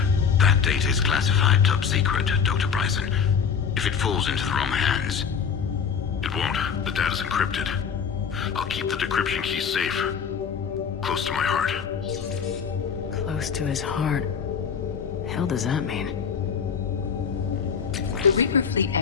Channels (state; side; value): quieter; right; 6.6 dB